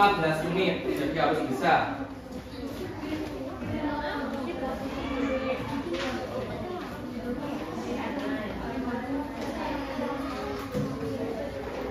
menit, jadi harus bisa.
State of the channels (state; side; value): identical; both; correlation 1.00